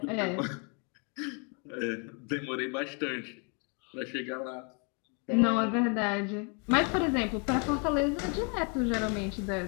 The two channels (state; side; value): quieter; right; 36.1 dB